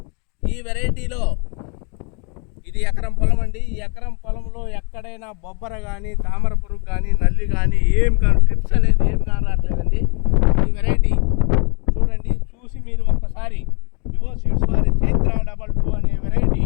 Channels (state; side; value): quieter; right; 34.2 dB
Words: ఈ వెరైటీలో ఇది ఎకరం పొలం అండి. ఈ ఎకరం పొలంలో ఎక్కడైనా బొబ్బర కానీ, తామర పురుగు కానీ, నల్లి కానీ ఏం కానీ ట్రిప్స్ అనేది ఏం కానీ రావట్లేదండి. ఈ వెరైటీ చూడండి, చూసి మీరు ఒక్కసారి వివో సీడ్స్ వారి చైత్ర 22 అనే వెరైటీ